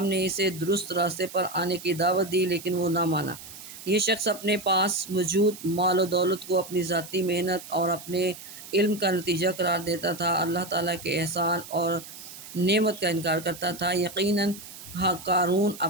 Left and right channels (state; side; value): noise; right; hiss, 15 dB below the sound